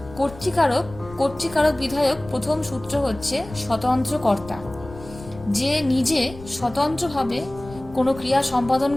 কর্তৃকারক কর্তৃকারক বিধায়ক প্রথম সূত্র হচ্ছে স্বতন্ত্র কর্তা। যে নিজে স্বতন্ত্রভাবে কোনো ক্রিয়া সম্পাদন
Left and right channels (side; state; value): left; noise; rumble, 17 dB below the sound